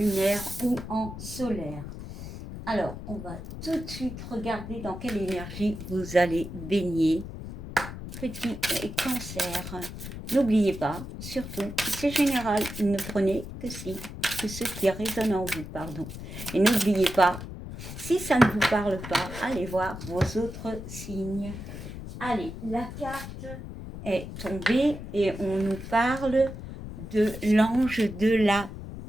ou en solaire. Alors, on va tout de suite regarder dans quelle énergie vous allez baigner. Petit cancer. N'oubliez pas, surtout, c'est général, ne prenez que ce qui résonne en vous, pardon. Et n'oubliez pas, si ça ne vous parle pas, allez voir vos autres signes. Allez, la carte est tombée et on nous parle de l'ange de la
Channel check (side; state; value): left; noise; rumble, 10 dB below the sound